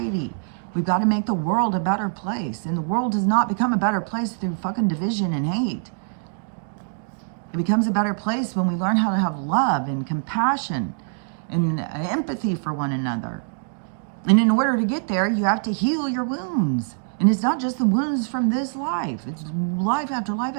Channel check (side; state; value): left; silent; digital silence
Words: We've got to make the world a better place. And the world does not become a better place through fucking division and hate. It becomes a better place when we learn how to have love and compassion and empathy for one another. And in order to get there, you have to heal your wounds. And it's not just the wounds from this life. It's life after life